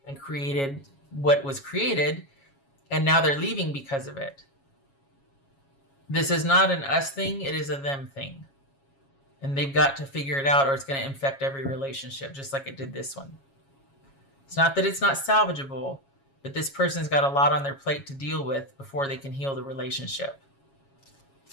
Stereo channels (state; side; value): late; right; 7.3 ms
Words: and created what was created, and now they're leaving because of it. This is not an us thing, it is a them thing. And they've got to figure it out, or it's going to infect every relationship, just like it did this one. It's not that it's not salvageable, but this person's got a lot on their plate to deal with before they can heal the relationship.